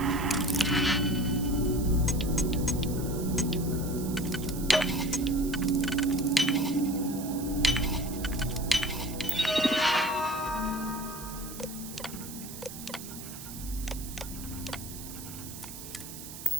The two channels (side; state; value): right; noise; hiss, 12 dB below the sound